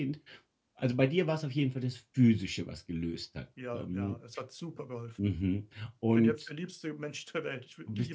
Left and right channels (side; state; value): both; identical; correlation 1.00